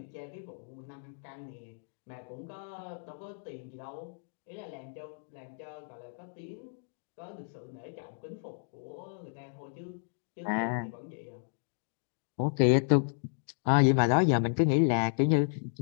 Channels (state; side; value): silent; right; digital silence